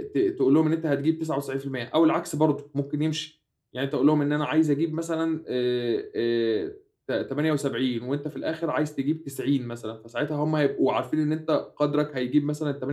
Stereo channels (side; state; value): both; identical; correlation 1.00